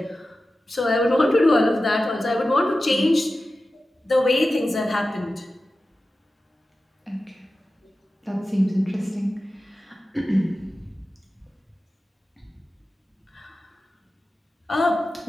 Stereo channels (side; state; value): both; normal; correlation 0.94